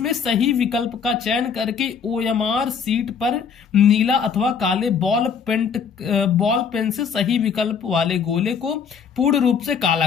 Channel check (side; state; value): right; quieter; 6.5 dB